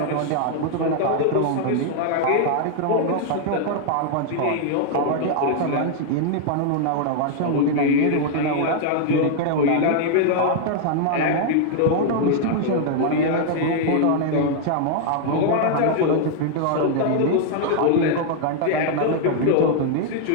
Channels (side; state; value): both; different; correlation 0.00